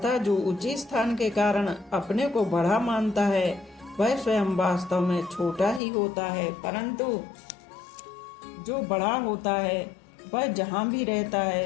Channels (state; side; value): drops out; right; at 5.8 s